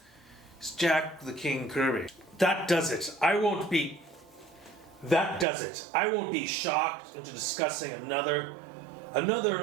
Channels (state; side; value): drops out; left; at 5.5 s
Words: He's Jack the King Kirby. That does it. That does it. I won't be shocked into discussing another